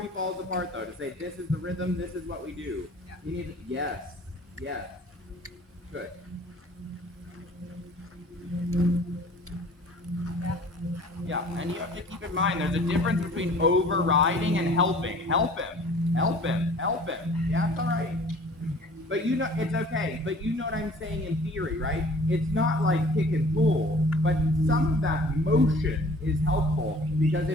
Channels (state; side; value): normal; both; correlation 0.49